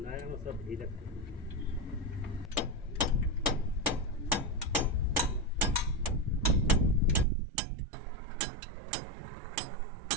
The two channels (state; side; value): drops out; left; at 7.2 s